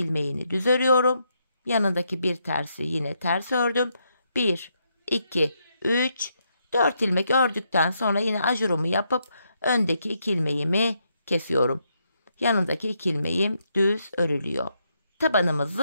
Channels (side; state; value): both; inverted; correlation -0.78